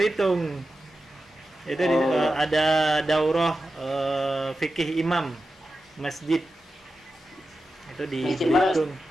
Itu ada daurah fikih imam masjid. Itu di Belitung.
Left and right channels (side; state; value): both; normal; correlation 0.91